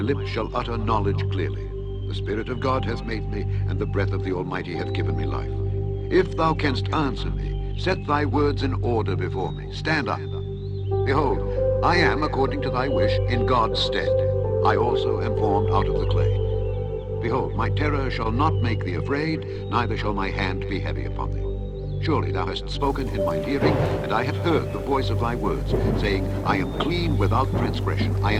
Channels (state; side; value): identical; both; correlation 1.00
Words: shall utter knowledge clearly. The Spirit of God hath made me, and the breath of the Almighty hath given me life. If thou canst answer me, set thy words in order before me. Stand up. Behold, I am, according to thy wish, in God's stead. I also am formed out of the clay. Behold, my terror shall not make thee afraid, neither shall my hand be heavy upon thee. Surely thou hast spoken in mine hearing, and I have heard the voice of thy words, saying, I am clean without transgression, I